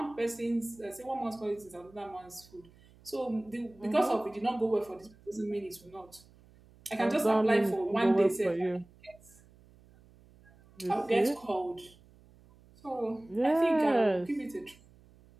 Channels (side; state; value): right; noise; hum, 26 dB below the sound